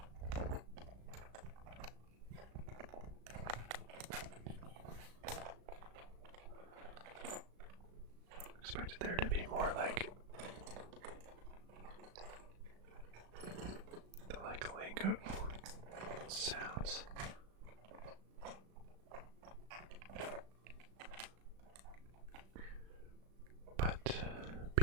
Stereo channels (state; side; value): late; left; 36 ms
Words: Expected there to be more like the Lego sounds. But